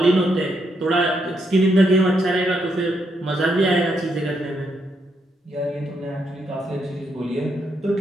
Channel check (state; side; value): normal; both; correlation 0.78